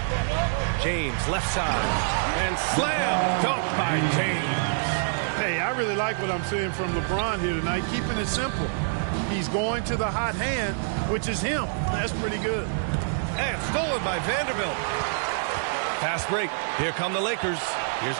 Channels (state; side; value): silent; left; digital silence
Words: James, left side. And slam dunk by James. Hey, I really like what I'm seeing from LeBron here tonight, keeping it simple. He's going to the hot hand, which is him. That's pretty good. And stolen by Vanderbilt. Fast break. Here come the Lakers. Here's